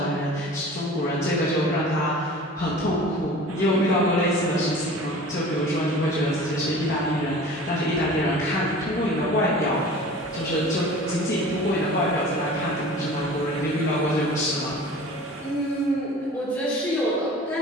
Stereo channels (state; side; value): normal; both; correlation 0.41